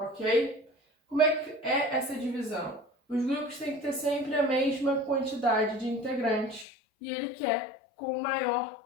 Como é que é essa divisão? Os grupos têm que ter sempre a mesma quantidade de integrantes e ele quer com o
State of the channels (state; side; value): drops out; right; at 6.7 s